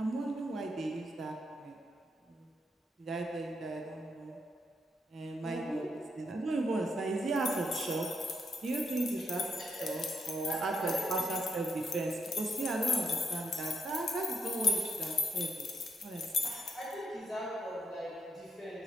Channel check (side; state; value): both; normal; correlation 0.78